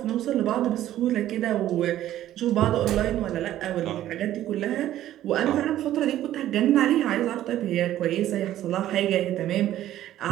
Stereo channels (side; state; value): left; quieter; 13.0 dB